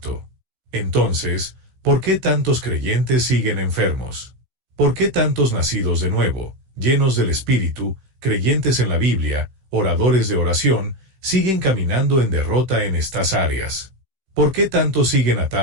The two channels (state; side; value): late; left; 15 ms